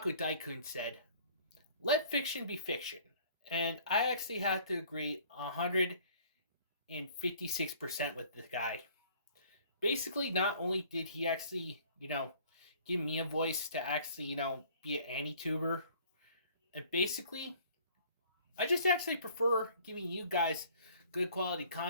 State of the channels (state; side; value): inverted; both; correlation -0.54